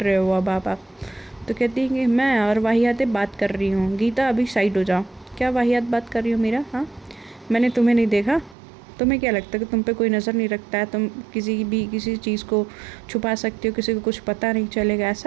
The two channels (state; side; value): drops out; left; at 8.6 s